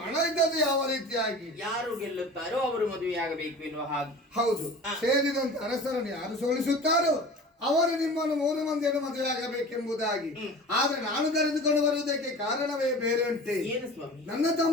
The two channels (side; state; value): both; normal; correlation 0.39